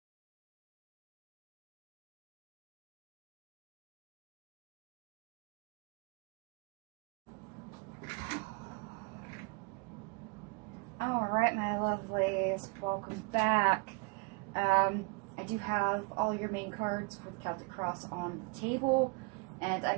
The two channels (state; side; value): quieter; left; 29.8 dB